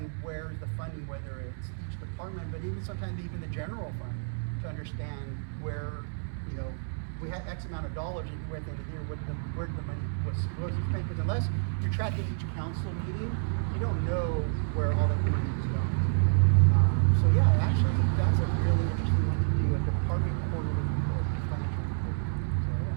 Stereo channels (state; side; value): silent; left; 58 dB below the other